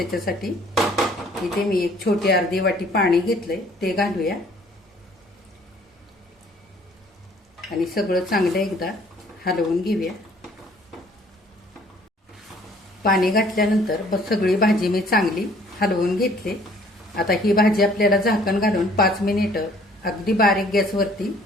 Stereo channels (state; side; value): normal; both; correlation 0.57